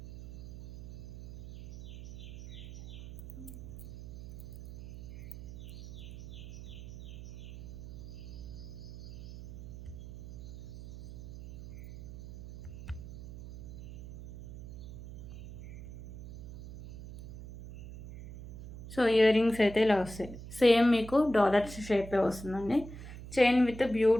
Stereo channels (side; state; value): right; noise; hum, 13 dB below the sound